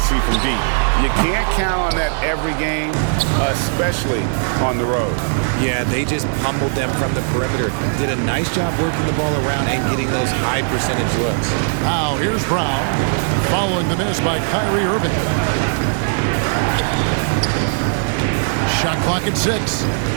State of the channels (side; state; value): left; silent; digital silence